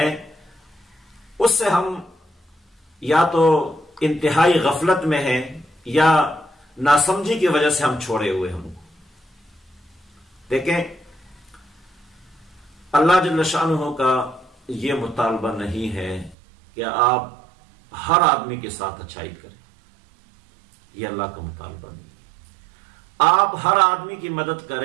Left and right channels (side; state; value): left; drops out; at 16.4 s